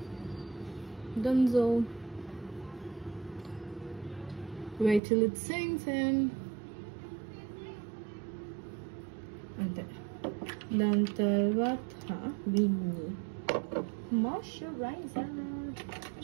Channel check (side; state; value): left; drops out; at 5.0 s